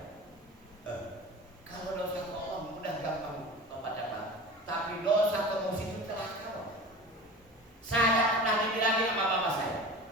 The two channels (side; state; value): both; normal; correlation 0.36